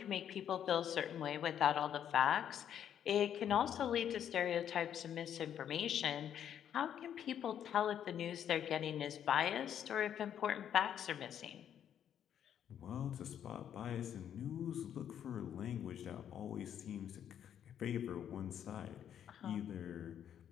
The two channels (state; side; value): quieter; right; 9.5 dB